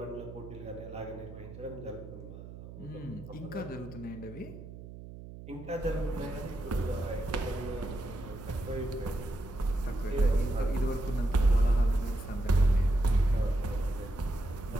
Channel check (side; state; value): right; noise; hum, 14 dB below the sound